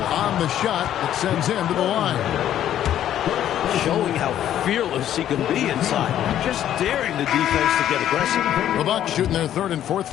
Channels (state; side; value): quieter; right; 11.2 dB